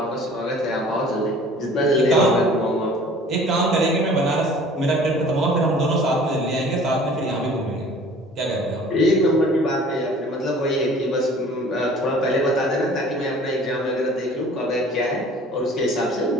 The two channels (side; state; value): both; normal; correlation 0.49